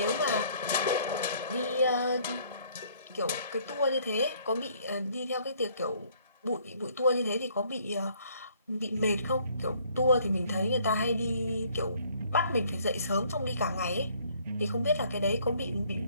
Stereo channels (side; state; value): both; inverted; correlation -0.62